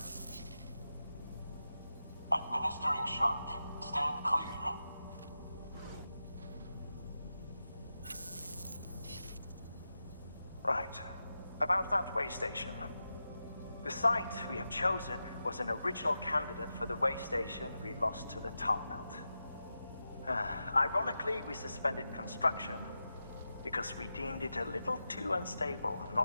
Administering shock. Stand clear. Right. About that way station. The site we have chosen was an original candidate for the way station we lost to the tar belt. Ironically, we suspended construction because we deemed it a little too unstable and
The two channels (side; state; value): both; inverted; correlation -0.90